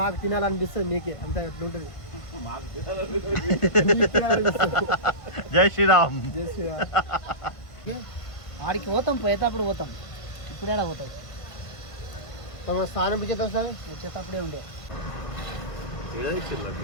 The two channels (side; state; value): right; late; 1.5 ms